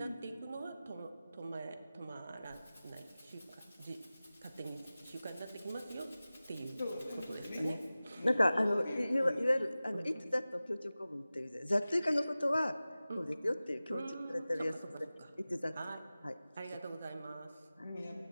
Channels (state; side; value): inverted; both; correlation -0.96